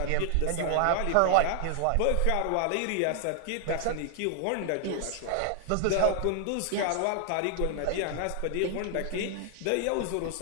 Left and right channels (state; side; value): different; both; correlation 0.00